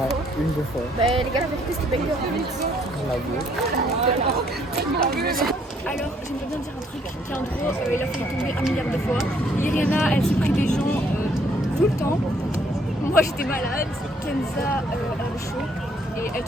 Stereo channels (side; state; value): both; normal; correlation 0.66